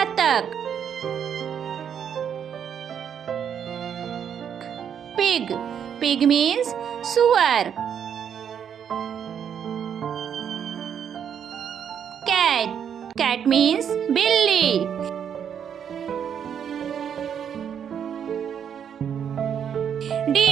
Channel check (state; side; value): quieter; left; 8.2 dB